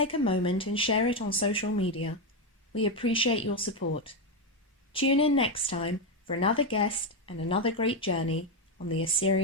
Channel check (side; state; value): both; normal; correlation 0.07